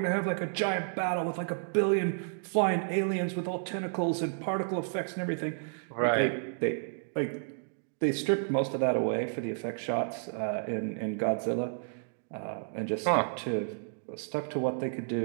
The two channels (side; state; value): left; silent; digital silence